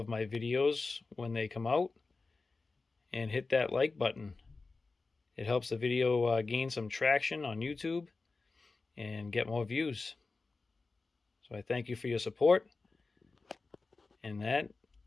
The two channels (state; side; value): quieter; right; 3.9 dB